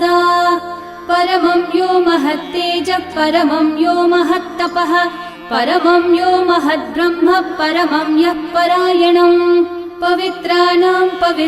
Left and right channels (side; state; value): both; identical; correlation 1.00